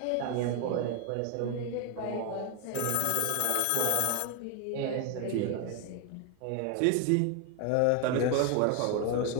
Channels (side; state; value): both; different; correlation 0.01